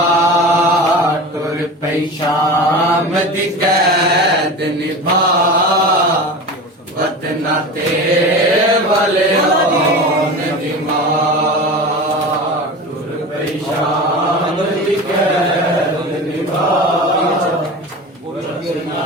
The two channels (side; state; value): both; normal; correlation 0.31